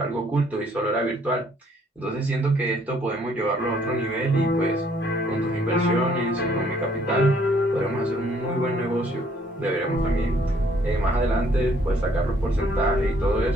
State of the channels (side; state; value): both; normal; correlation 0.64